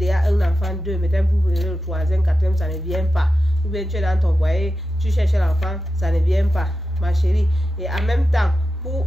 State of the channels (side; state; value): both; normal; correlation 0.91